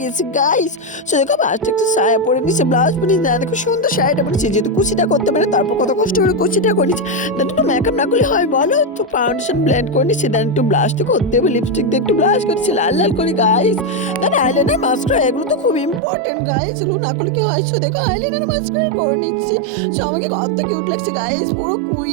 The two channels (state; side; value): drops out; left; at 16.0 s